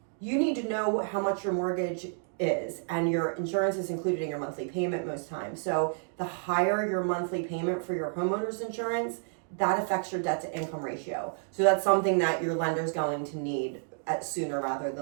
You need to know how much your mortgage is, and your insurance is included in your monthly payment most times. So the higher your monthly payment for your homeowner's insurance, that affects your debt to income ratio. So that's something that your lender's going to need sooner rather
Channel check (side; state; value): left; silent; digital silence